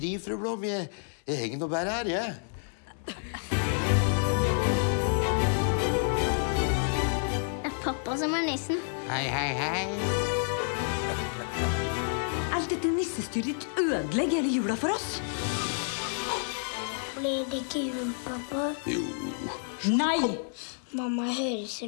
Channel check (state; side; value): silent; right; digital silence